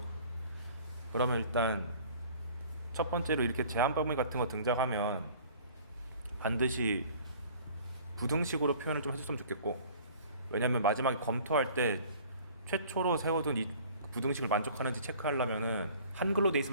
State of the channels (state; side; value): inverted; both; correlation -0.49